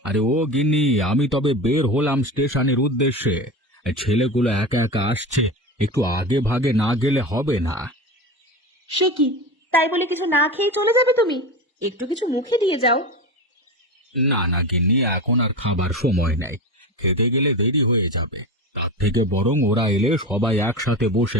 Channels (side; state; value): both; normal; correlation 0.25